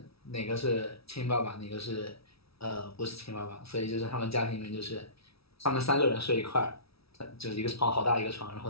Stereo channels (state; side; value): late; right; 0.76 ms